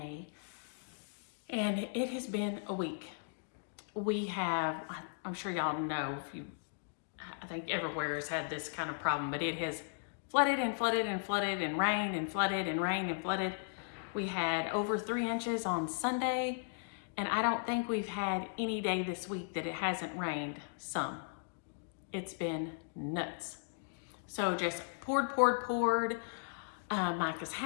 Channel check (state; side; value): silent; right; digital silence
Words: and it has been a week. We have, I'm sure y'all know, I think everywhere has had this kind of problem, but it has flooded and flooded and flooded and rained and flooded and rained and flooded. We had over 3 inches on Sunday, and I don't think we've had any day this week that it hasn't rained some. It's been nuts. So just poured. Micah's